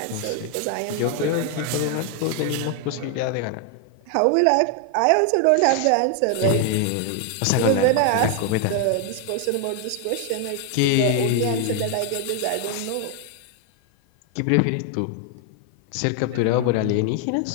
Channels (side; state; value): both; different; correlation 0.00